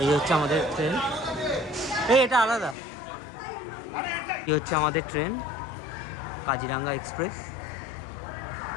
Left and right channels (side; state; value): right; drops out; at 2.8 s